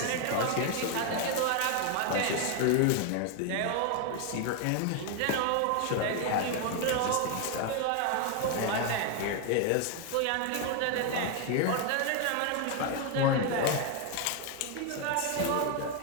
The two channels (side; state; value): both; different; correlation 0.01